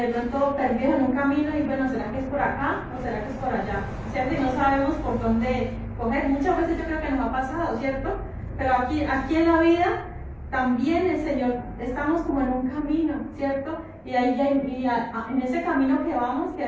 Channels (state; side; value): identical; both; correlation 1.00